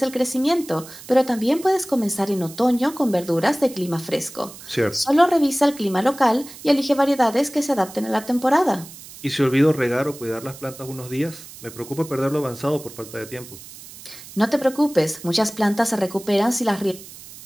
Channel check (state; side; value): noise; right; hiss, 17 dB below the sound